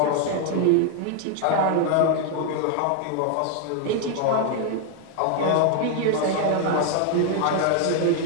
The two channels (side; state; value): both; different; correlation 0.00